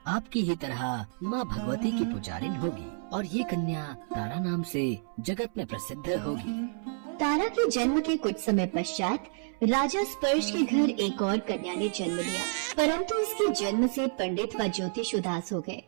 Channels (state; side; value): silent; left; 58 dB below the other